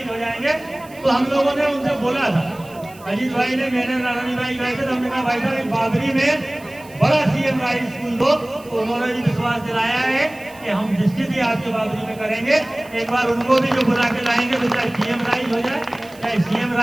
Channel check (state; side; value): noise; right; hiss, 23 dB below the sound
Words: हो जाएंगे। तो हम लोगों ने उनसे बोला था, अजीत भाई ने मैंने नारायण भाई गए थे, तो हमने कहा भाई साहब बाबरी में बड़ा सीएम राइज स्कूल दो, तो उन्होंने भी विश्वास दिलाया है कि हम निश्चित ही आपके बाबरी में करेंगे। एक बार उनको भी जो बुला के लाएंगे तो चाहे पीएम राइज हो जाए चाहे सीएम